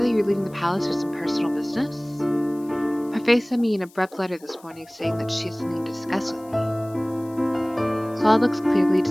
that you were leaving the palace for some personal business. Parfait sent me an abrupt letter this morning saying that she has something to discuss with me. Klaude looks clearly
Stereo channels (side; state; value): left; noise; hiss, 26 dB below the sound